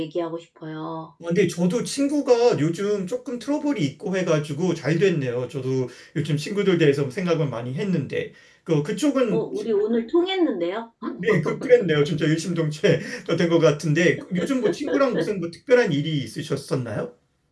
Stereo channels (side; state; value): both; identical; correlation 1.00